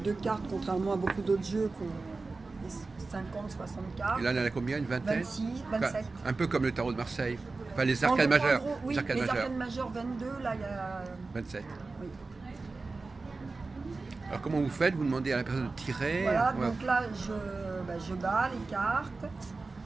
de cartes, contrairement à beaucoup d'autres jeux qui ont 50, 60 cartes. Et là, il y en a combien? Une vingtaine? 26, 27. Enfin, un peu comme le tarot de Marseille. Enfin, les arcanes majeures. En gros, oui, les arcanes majeures 22, là, il y a... 27. Oui. Alors, comment vous faites? Vous demandez à la personne de tirer? Voilà, donc là, je bats les cartes.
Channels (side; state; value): left; quieter; 3.7 dB